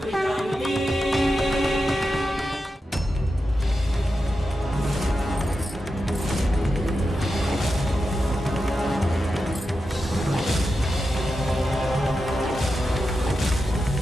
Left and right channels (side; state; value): both; normal; correlation 0.90